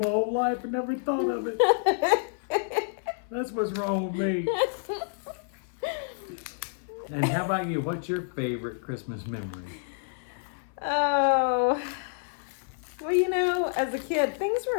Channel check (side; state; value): right; silent; 55 dB below the other